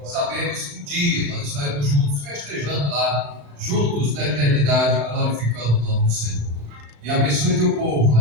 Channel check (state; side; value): late; left; 35 ms